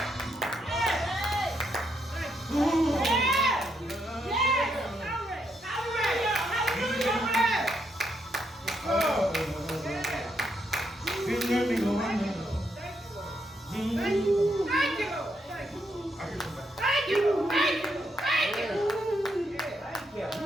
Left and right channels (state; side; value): normal; both; correlation 0.78